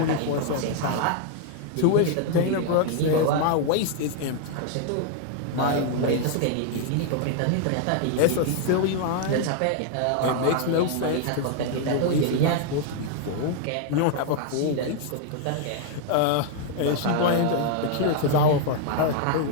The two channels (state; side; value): different; both; correlation 0.00